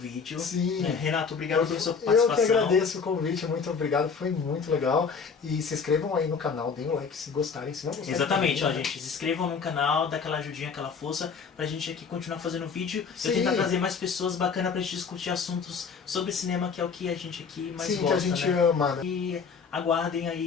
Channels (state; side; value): quieter; right; 5.7 dB